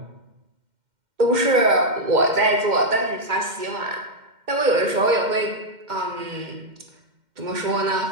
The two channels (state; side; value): late; left; 2.1 ms